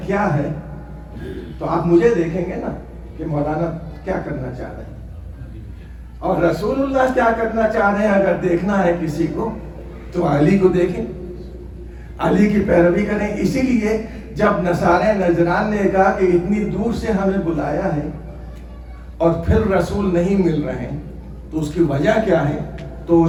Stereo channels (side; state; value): both; identical; correlation 1.00